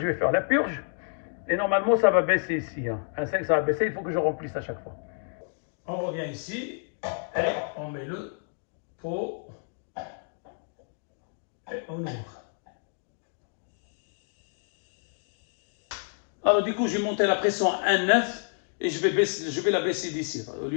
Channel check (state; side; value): silent; right; 59 dB below the other